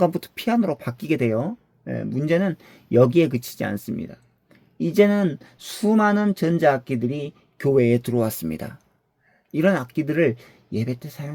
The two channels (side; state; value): both; identical; correlation 1.00